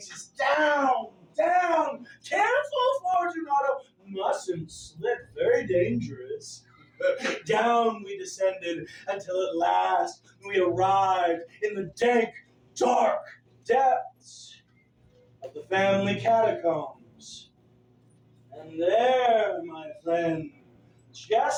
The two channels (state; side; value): identical; both; correlation 1.00